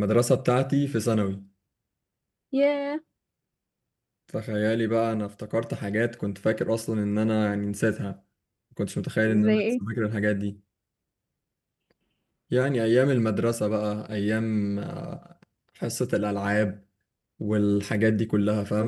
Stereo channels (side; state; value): both; identical; correlation 1.00